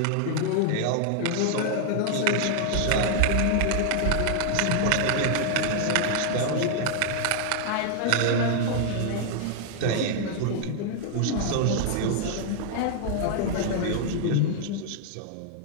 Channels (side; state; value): both; different; correlation 0.00